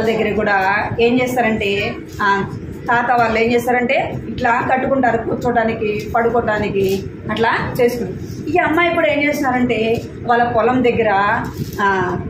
దగ్గర కూడా ఏం చేస్తారంటే తాత వాళ్ళు ఏం చేస్తారంటే ఇట్లా కట్టుకుంటారు, కూర్చోడానికి పడుకోవడానికి అట్లా చేసుకుంటారు. ఈ అమ్మాయి కూడా ఏం చేస్తున్నారంటే వాళ్ళ పొలం దగ్గర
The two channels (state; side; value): identical; both; correlation 1.00